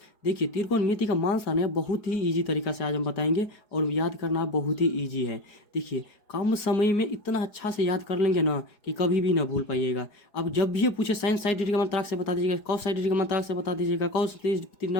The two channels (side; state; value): right; late; 4.8 ms